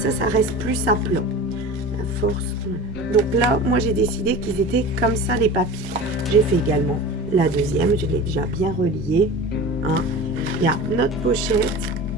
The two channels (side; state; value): both; normal; correlation 0.34